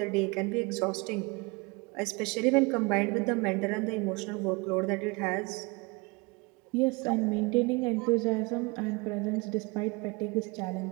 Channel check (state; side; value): quieter; left; 27.1 dB